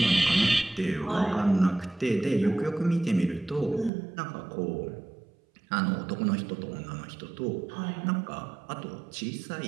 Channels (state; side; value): drops out; left; at 3.9 s